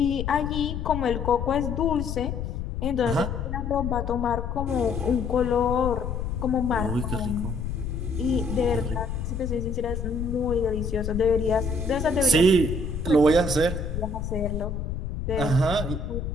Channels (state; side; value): noise; left; rumble, 4 dB below the sound